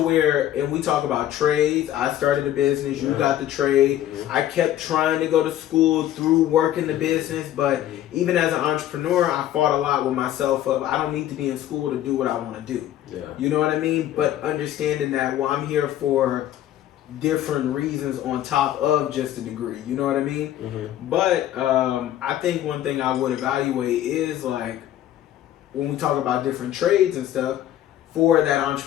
and we talk about trades. I started a business. You got the trade. I kept trying to go to school through working the business, but even as an entrepreneur, I fought a lot with myself of, I don't need to be in school to do what I want to do. Yeah. You know what I mean? But understanding that, well, I'm here for different reasons on top of just a degree. You know what I mean? But I think one thing I would evaluate is, like, when we talk about different trades and stuff, for that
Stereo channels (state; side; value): quieter; right; 12.4 dB